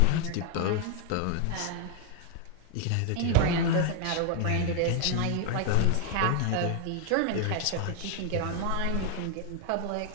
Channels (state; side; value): different; both; correlation 0.01